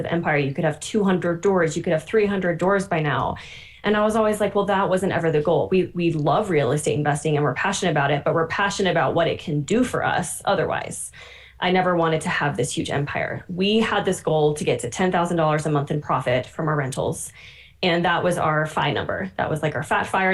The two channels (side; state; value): both; identical; correlation 1.00